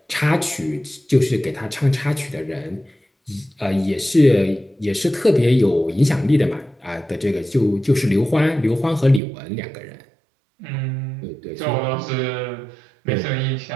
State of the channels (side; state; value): left; drops out; at 9.2 s